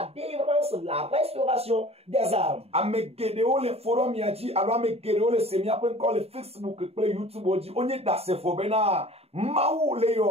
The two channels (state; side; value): late; left; 0.29 ms